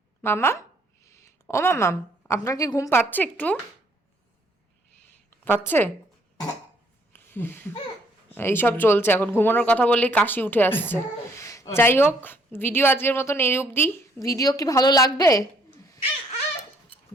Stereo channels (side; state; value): both; normal; correlation 0.66